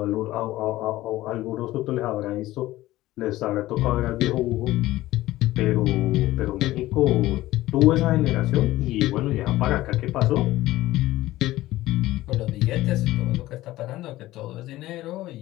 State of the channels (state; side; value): quieter; right; 16.5 dB